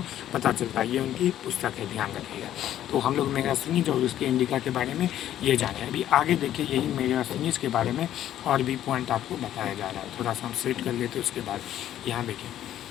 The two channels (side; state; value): right; quieter; 11.8 dB